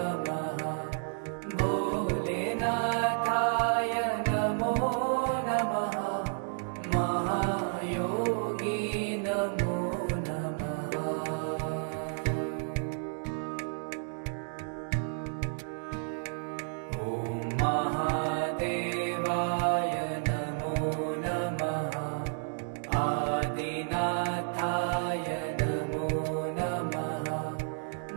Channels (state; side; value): silent; left; digital silence